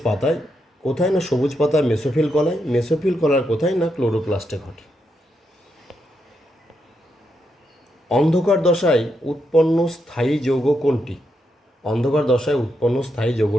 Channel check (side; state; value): both; normal; correlation 0.82